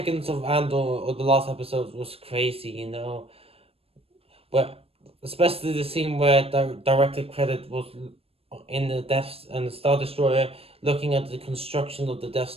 of Andor or the last episode was crazy. But especially the scene where director credit was in the Death and the Star Destroyer, looking at the construction of the Death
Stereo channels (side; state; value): left; late; 0.28 ms